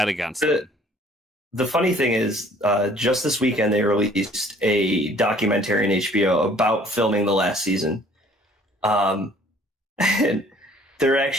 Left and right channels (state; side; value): normal; both; correlation 0.56